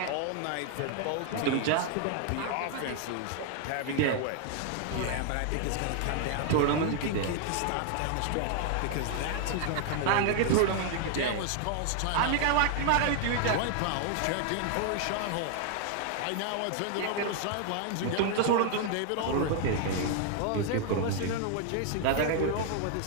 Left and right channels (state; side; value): different; both; correlation 0.00